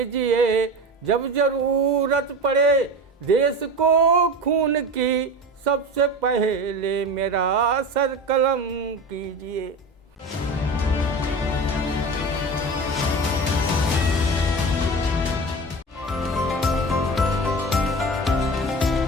जब जरूरत पड़े देश को खून की, सबसे पहले मेरा सर कलम कीजिए।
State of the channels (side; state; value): both; normal; correlation 0.30